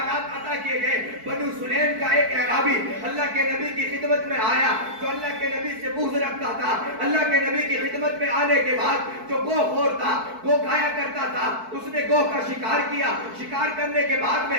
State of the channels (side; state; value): left; late; 4.6 ms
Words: عطا کیے گئے. بنو سلیم کا ایک اعرابی اللہ کے نبی کی خدمت میں آیا جو اللہ کے نبی سے بغض رکھتا تھا. اللہ کے نبی کی خدمت میں آنے کے بعد جو گو خور تھا، گو کھایا کرتا تھا، اس نے گو کا شکار کیا. شکار کرنے کے بعد